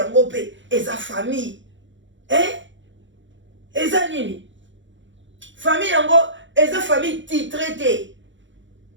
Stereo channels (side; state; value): left; late; 0.54 ms